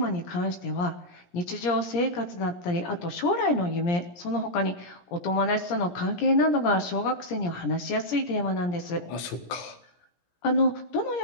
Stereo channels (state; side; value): late; right; 17 ms